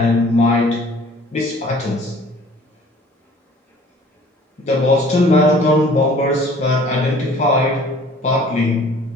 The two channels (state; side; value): normal; both; correlation 0.51